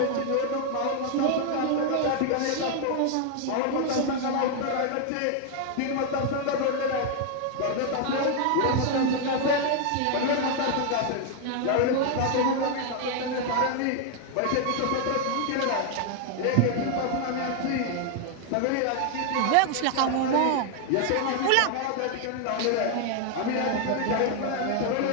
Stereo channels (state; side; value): different; both; correlation 0.00